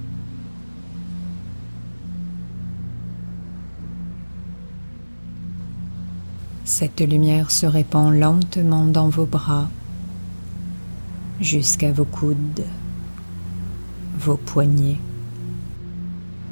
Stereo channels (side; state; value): both; inverted; correlation -1.00